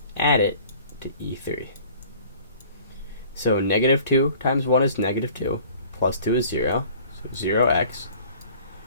add it to E3. So -2 times 1 is -2, plus 2 is 0, so 0x.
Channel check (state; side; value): inverted; both; correlation -0.50